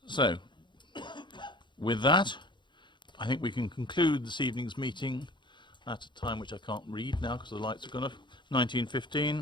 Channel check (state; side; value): late; right; 0.23 ms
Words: So, with that, I think we can conclude this evening's meeting at a time which I can't read now because the lights have gone off,